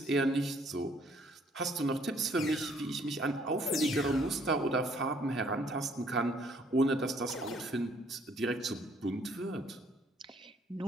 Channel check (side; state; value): both; normal; correlation 0.63